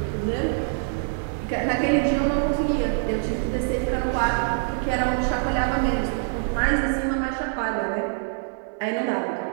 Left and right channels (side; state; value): left; silent; 62 dB below the other